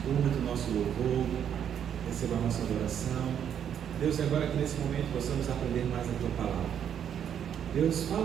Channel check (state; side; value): quieter; left; 8.9 dB